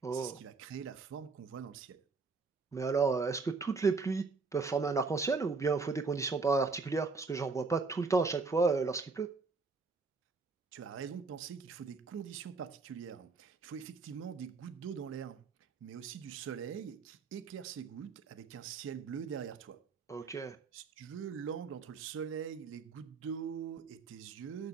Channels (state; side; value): quieter; left; 4.3 dB